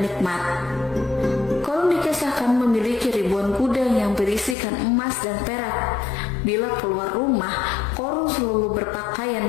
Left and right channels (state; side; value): drops out; right; at 4.5 s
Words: nikmat. Korun dikisahkan memiliki ribuan gudang yang berisikan emas dan perak. Bila keluar rumah, Korun selalu berpakaian